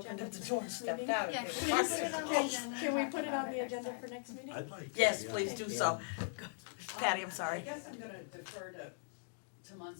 agenda up the for door and next stepped meeting? out. Yeah, They can were we parked put it on the there. agenda? Can we put it on the agenda for next meeting? I'd like to, Yes, yeah. please do so. Patty, I'm sorry. I guess I'm gonna defer to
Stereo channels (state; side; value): silent; right; digital silence